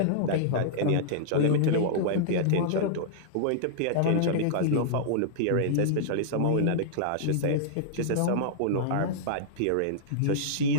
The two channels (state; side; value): different; both; correlation -0.02